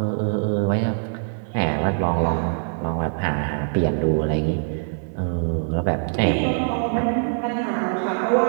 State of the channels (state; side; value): silent; left; digital silence